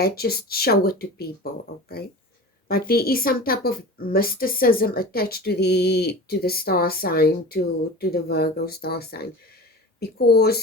just show it to people, okay? But there is some type of mysticism attached to the star sign, to the Virgo star sign,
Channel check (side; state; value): both; normal; correlation 0.34